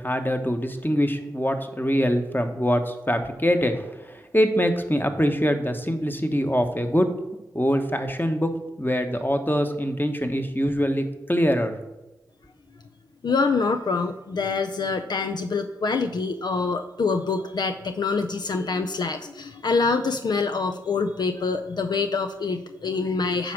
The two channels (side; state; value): both; normal; correlation 0.79